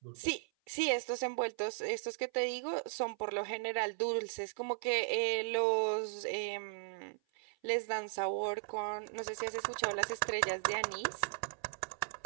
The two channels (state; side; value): silent; left; 53 dB below the other